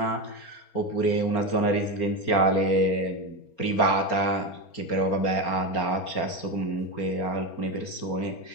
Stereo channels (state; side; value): late; right; 4.3 ms